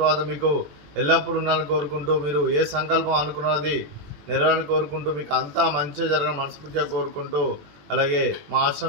మీకు ఎల్లప్పుడూ ఉండాలని కోరుకుంటూ మీరు ఏ సంకల్పం అనుకున్నది నెరవేరాలని కోరుకుంటూ మీకు అంతా మంచిగా జరగాలని మనస్ఫూర్తిగా కోరుకుంటూ అలాగే మా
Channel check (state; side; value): late; left; 21 ms